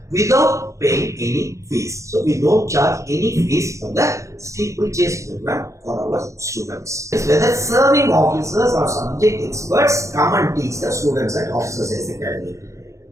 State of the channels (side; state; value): left; late; 0.15 ms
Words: without paying any fees. So we don't charge any fees for the steeplechase program for our students. Whether serving officers or subject experts come and teach the students at Officers AS Academy.